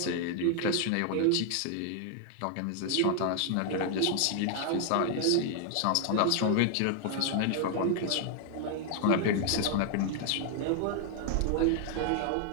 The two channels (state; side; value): different; both; correlation 0.00